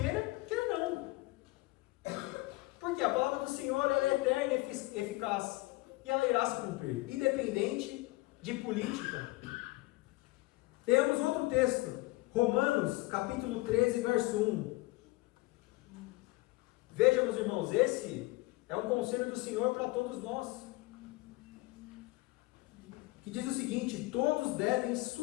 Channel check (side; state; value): right; quieter; 21.2 dB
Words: quer não. Porque a palavra do Senhor ela é eterna e eficaz. E ela irá se cumprir, independente de política. Temos outro texto, Romanos, capítulo 13, verso 1. Vejam, meus irmãos, esse é um conselho do Senhor para todos nós. Que diz o seguinte: todos devem